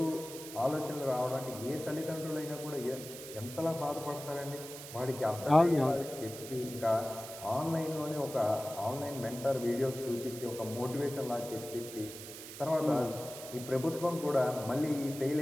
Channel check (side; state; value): right; noise; hiss, 12 dB below the sound